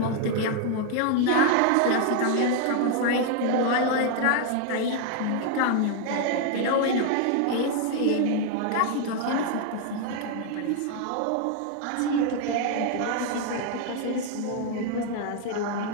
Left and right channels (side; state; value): both; different; correlation 0.00